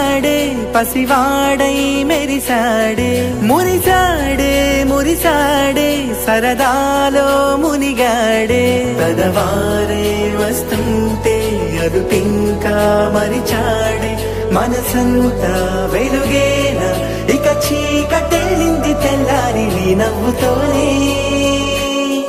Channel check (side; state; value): both; identical; correlation 1.00